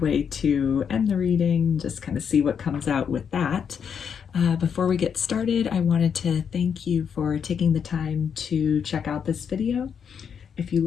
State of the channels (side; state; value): right; quieter; 7.2 dB